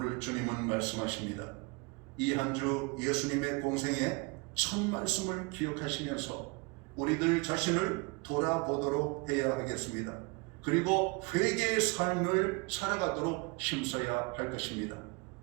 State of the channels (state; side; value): quieter; left; 29.3 dB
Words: 주님은 말씀하십니다. 이 한 주 예수님의 공생의 첫 말씀을 기억하시면서 우리들 자신을 돌아보도록 해야 하겠습니다. 그리고 회개의 삶을 살아가도록 힘써야 할 것입니다.